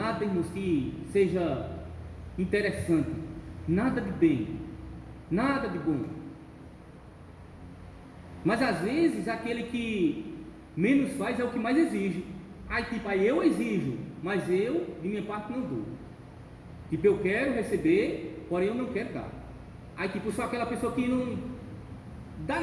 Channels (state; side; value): identical; both; correlation 1.00